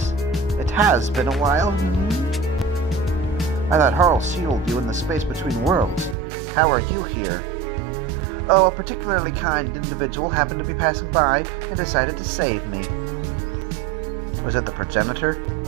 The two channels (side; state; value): left; drops out; at 6.2 s